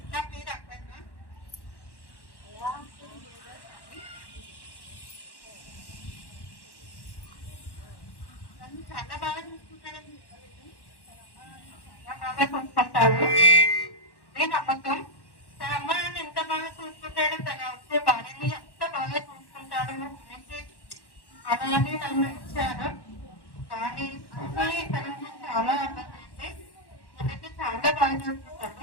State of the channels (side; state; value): right; late; 1.1 ms